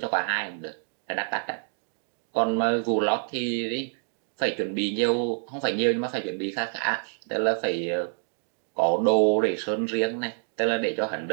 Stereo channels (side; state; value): left; silent; 60 dB below the other